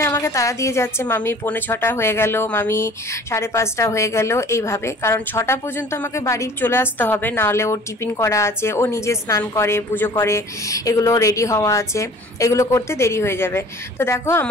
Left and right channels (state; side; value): normal; both; correlation 0.48